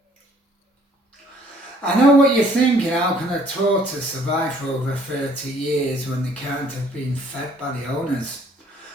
I know what you're thinking, how can a tortoise survive for over 30 years when they can't have been fed by the owners?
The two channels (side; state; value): both; normal; correlation 0.60